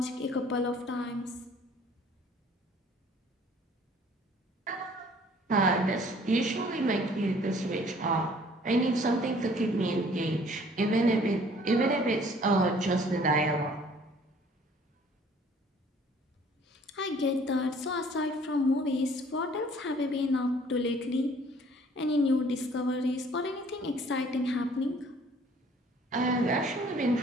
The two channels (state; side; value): normal; both; correlation 0.56